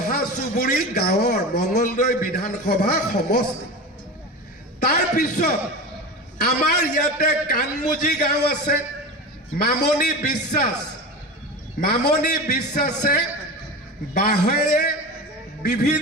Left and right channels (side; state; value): both; normal; correlation 0.28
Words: চুবুৰী গাঁৱৰ মঙলদৈ বিধানসভা সমষ্টি তাৰ পিছত আমাৰ ইয়াতে কানমুজি গাঁও আছে মামনি বিশ্বাসে বাঁহেৰে